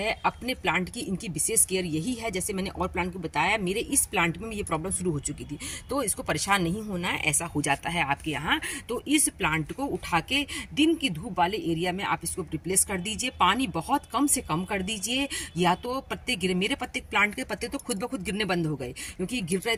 अपने प्लांट की इनकी विशेष केयर यही है। जैसे मैंने और प्लांट को बताया, मेरे इस प्लांट में ये प्रॉब्लम शुरू हो चुकी थी, तो इसको परेशान नहीं होना है, ऐसा हो जाता है आपके यहाँ। तो इस प्लांट को उठा के दिन की धूप वाले एरिया में आप इसको रिप्लेस कर दीजिए, पानी बहुत कम से कम कर दीजिए, या तो पत्ते गिरे, मेरे प्लांट के पत्ते तो खुद ब खुद गिरने बंद हो गए क्योंकि गिर रहे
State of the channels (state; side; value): identical; both; correlation 1.00